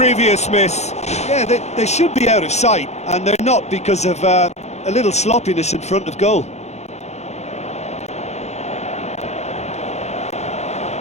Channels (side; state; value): right; late; 0.32 ms